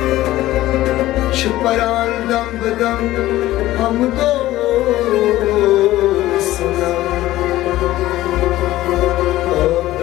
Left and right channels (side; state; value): right; quieter; 15.7 dB